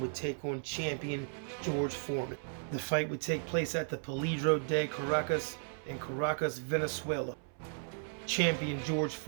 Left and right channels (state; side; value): silent; left; 54 dB below the other